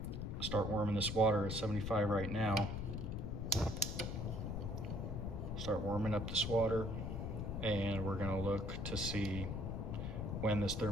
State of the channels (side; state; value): left; noise; rumble, 3 dB below the sound